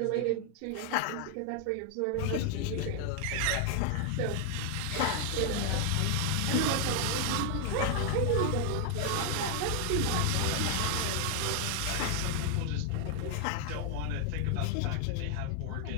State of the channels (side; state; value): both; different; correlation 0.00